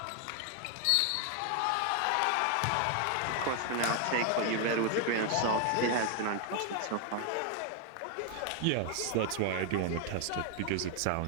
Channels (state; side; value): different; both; correlation 0.00